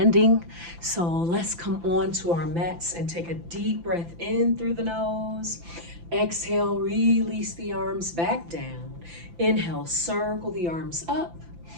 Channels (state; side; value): late; left; 5.9 ms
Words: So let's come on to our mats and take a deep breath in through the nose. Exhale, release the arms back down. Inhale, circle the arms up.